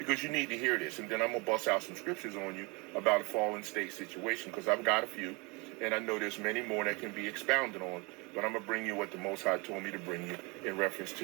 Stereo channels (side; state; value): left; quieter; 28.4 dB